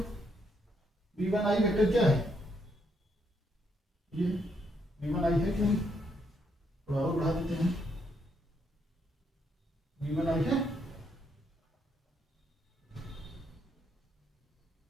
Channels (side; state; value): both; normal; correlation 0.75